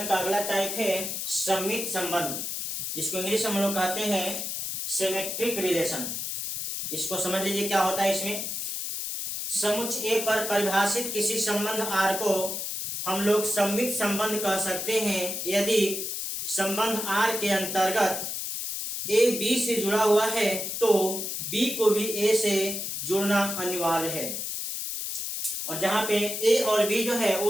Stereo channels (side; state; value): left; noise; hiss, 4 dB below the sound